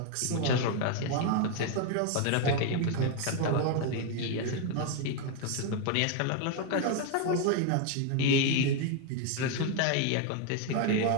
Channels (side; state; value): both; different; correlation 0.01